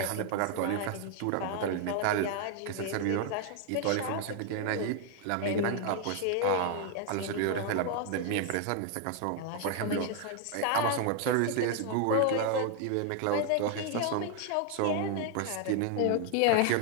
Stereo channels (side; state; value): both; different; correlation 0.00